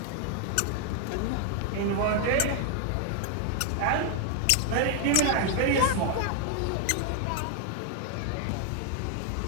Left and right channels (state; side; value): different; both; correlation 0.00